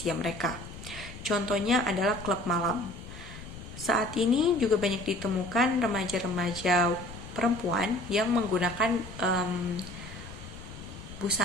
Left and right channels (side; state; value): left; noise; rumble, 13 dB below the sound